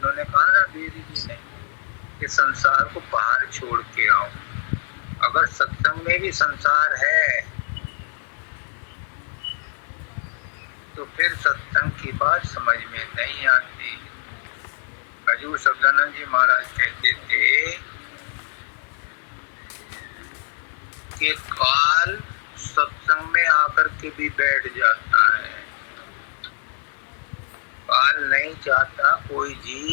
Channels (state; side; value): silent; right; digital silence